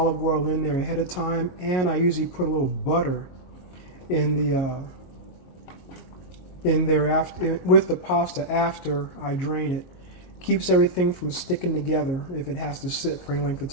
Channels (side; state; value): right; late; 22 ms